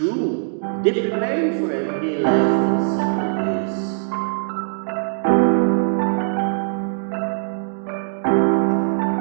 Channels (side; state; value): left; silent; digital silence